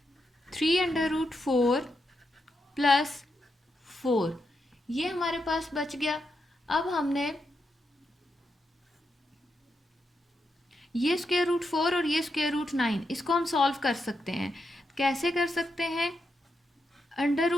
3 under root 4 plus 4, ये हमारे पास बच गया। अब हमने ये स्क्वायर रूट 4 और ये स्क्वायर रूट 9 इसको हम सॉल्व कर सकते हैं। कैसे कर सकते हैं, अंडर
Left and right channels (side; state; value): both; normal; correlation 0.84